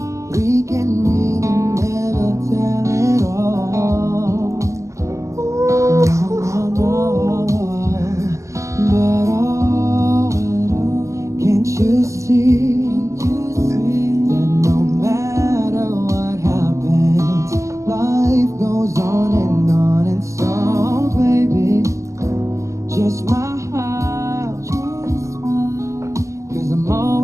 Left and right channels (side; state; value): left; late; 0.15 ms